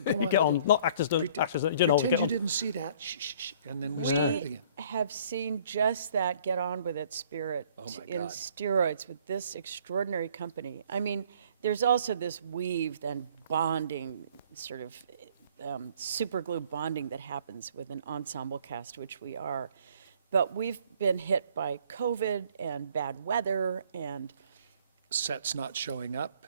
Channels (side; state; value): both; inverted; correlation -0.57